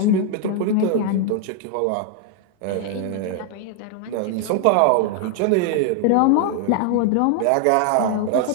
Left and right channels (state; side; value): different; both; correlation 0.00